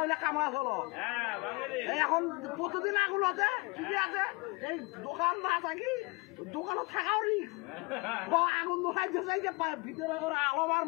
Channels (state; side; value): quieter; right; 27.8 dB